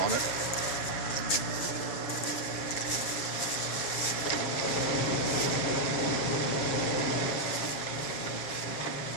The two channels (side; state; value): right; late; 7.5 ms